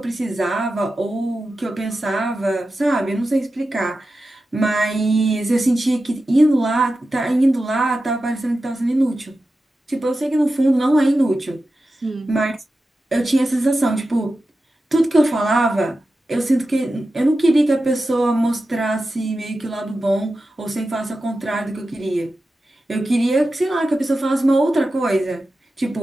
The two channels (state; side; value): normal; both; correlation 0.92